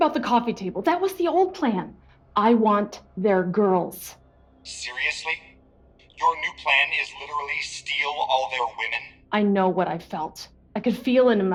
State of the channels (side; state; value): both; identical; correlation 1.00